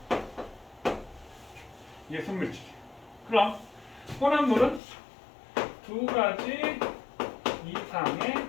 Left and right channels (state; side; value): drops out; right; at 4.8 s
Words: 이게 순물질. 그럼 혼합물은 두 가지 이상의